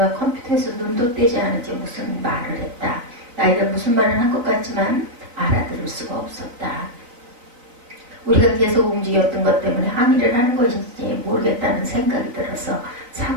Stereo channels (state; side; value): late; left; 4.0 ms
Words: 컴퓨터에서 눈도 떼지 않은지 무슨 말을 했다. 나이가 무슨 말을 한 것 같지만 알아들을 수가 없었다. 우리가 계속 움직였던 것 때문에 항의를 하는 것인지 모르겠다는 생각이 들어서